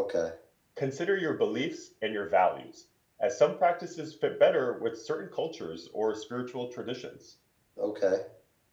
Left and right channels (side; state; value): both; identical; correlation 1.00